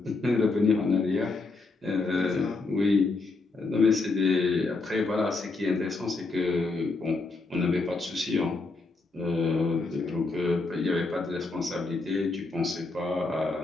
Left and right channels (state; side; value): quieter; right; 3.6 dB